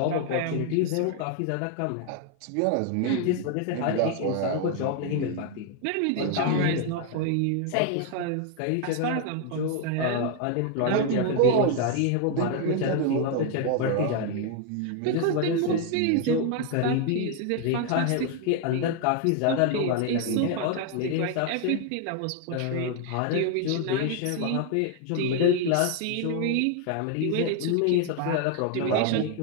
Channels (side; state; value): both; different; correlation 0.00